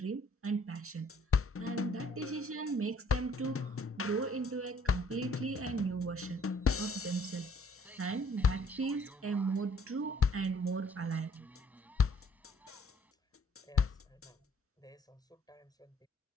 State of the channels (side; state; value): both; normal; correlation 0.61